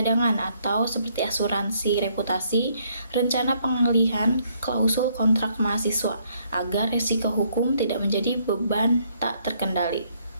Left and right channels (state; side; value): inverted; both; correlation -0.69